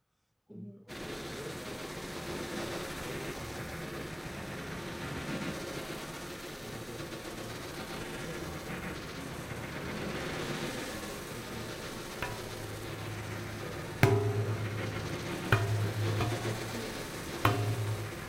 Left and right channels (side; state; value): both; identical; correlation 1.00